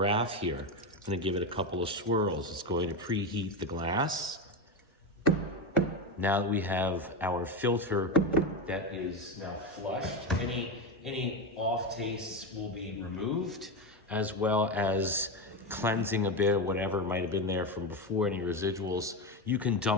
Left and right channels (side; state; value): both; normal; correlation 0.15